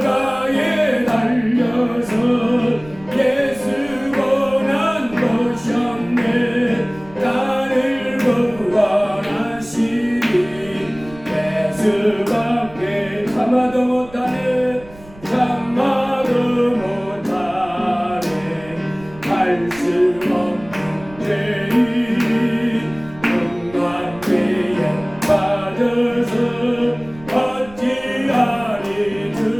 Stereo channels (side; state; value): right; noise; rumble, 21 dB below the sound